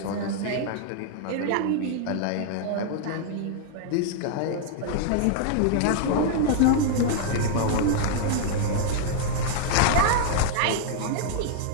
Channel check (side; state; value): both; different; correlation -0.01